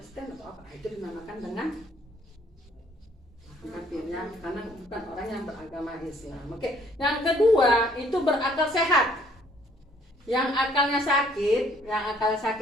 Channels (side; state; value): both; normal; correlation 0.62